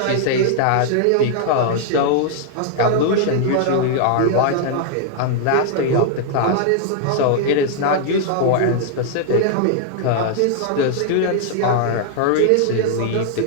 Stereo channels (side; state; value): both; different; correlation -0.01